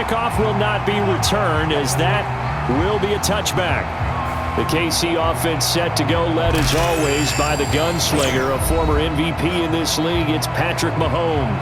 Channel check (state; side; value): identical; both; correlation 1.00